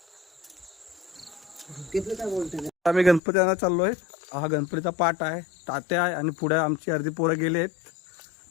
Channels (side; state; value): right; drops out; at 3.2 s